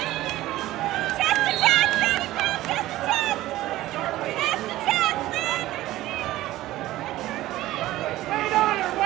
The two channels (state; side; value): quieter; left; 16.0 dB